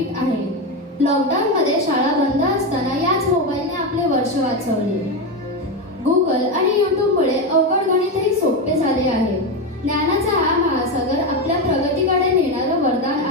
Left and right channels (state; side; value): normal; both; correlation 0.13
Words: लॉकडाऊनमध्ये शाळा बंद असताना याच मोबाईलने आपले वर्ष वाचवले. गुगल आणि यूट्यूबमुळे अवघड गणितही सोपे झाले आहे. ज्ञानाचा हा महासागर आपल्या प्रगतीकडे नेणारं वरदान